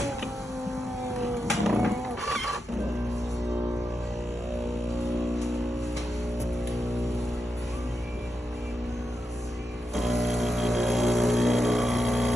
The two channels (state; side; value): normal; both; correlation 0.87